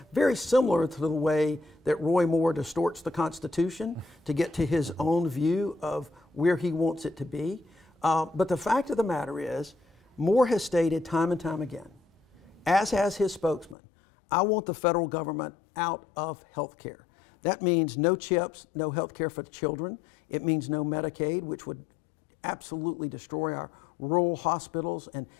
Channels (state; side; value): drops out; right; at 13.8 s